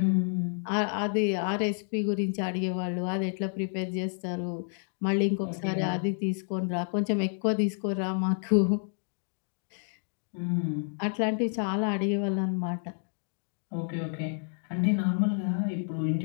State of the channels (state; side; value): silent; right; 58 dB below the other